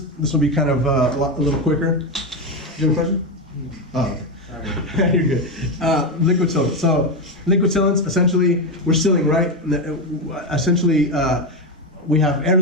This will be kind of a little quicker. Do you have a question? Oh, you're good. Liquid sealants. So liquid sealants, essentially, we're sealing, right? Essentially, we have air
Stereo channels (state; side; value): normal; both; correlation 0.11